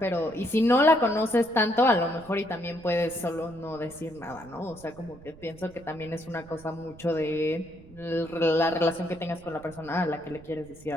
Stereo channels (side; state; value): right; noise; rumble, 21 dB below the sound